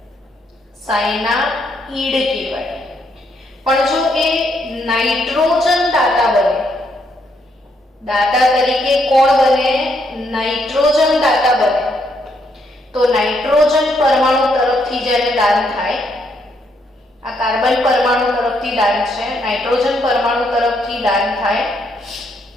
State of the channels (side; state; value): both; normal; correlation 0.74